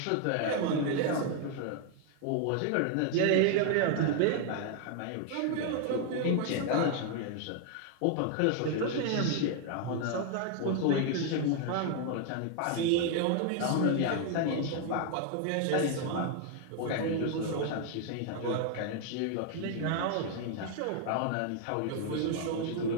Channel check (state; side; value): different; both; correlation 0.00